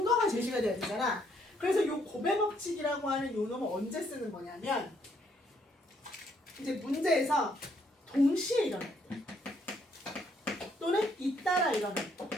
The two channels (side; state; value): both; normal; correlation 0.70